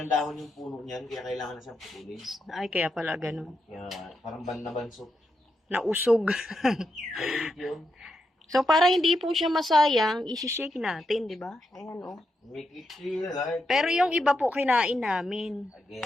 dahon yung puno niyan, kaya kailangan na siyang putulin. Ay, kaya pala ganun. Kaya parang ban na bansot. Nausog. Kaya yun. So, para hindi po siya masayang, isi-shake natin, 'di ba? Ayan, oh. Make it feel like... Pero yung iba po kinain namin.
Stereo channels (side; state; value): both; normal; correlation 0.84